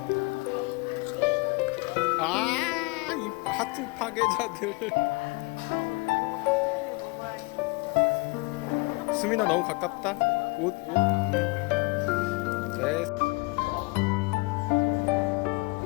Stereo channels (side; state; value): right; quieter; 26.6 dB